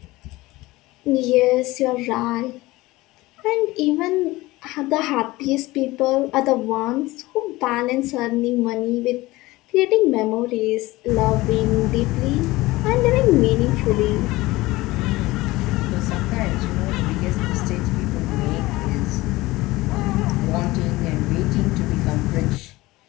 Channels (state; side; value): quieter; right; 19.6 dB